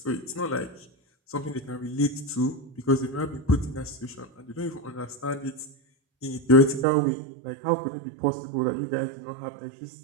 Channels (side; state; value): left; drops out; at 6.9 s